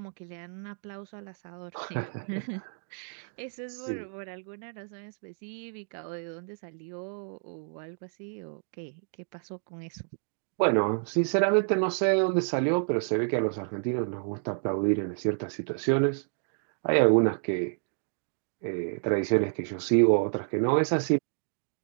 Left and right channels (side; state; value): left; silent; digital silence